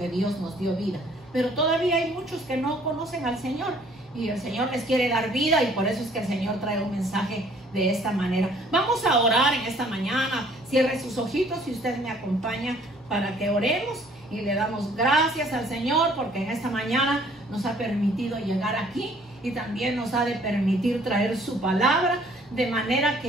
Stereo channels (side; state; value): both; normal; correlation 0.58